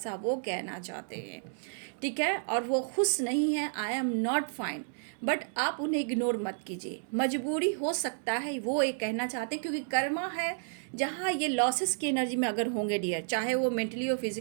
वो कहना चाहते हैं। ठीक है, और वो खुश नहीं है, आई एम नॉट फाइन। बट आप उन्हें इग्नोर मत कीजिए, मजबूरी हो सकता है वो ये कहना चाहते हैं, क्योंकि कर्मा है जहाँ ये लॉसेस की एनर्जी में अगर होंगे डियर, चाहे वो मेंटली हो,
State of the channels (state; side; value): silent; left; digital silence